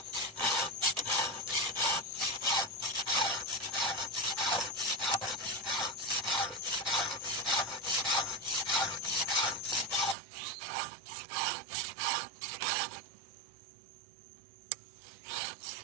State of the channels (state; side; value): drops out; left; at 10.2 s